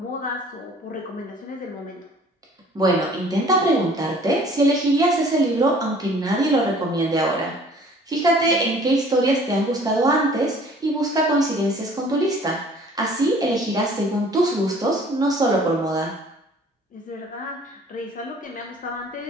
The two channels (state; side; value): normal; both; correlation 0.53